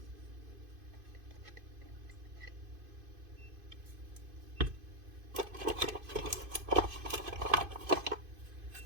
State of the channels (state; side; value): late; left; 2.5 ms